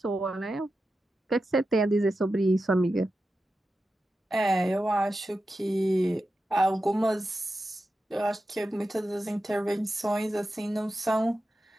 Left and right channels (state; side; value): normal; both; correlation 0.91